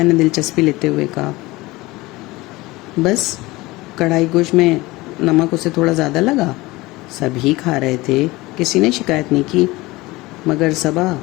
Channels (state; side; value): quieter; right; 20.7 dB